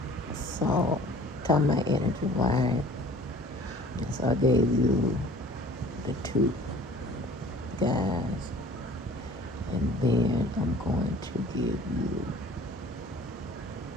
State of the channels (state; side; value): normal; both; correlation 0.48